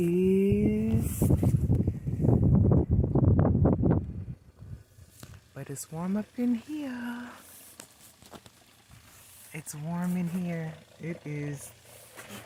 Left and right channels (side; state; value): both; identical; correlation 1.00